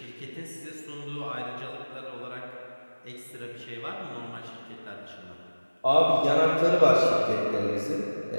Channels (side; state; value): both; inverted; correlation -1.00